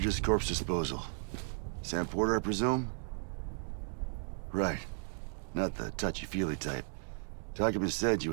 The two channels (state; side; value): silent; left; 54 dB below the other